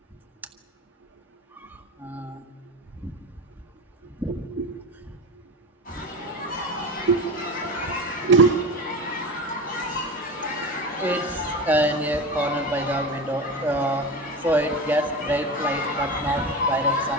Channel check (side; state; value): both; normal; correlation 0.27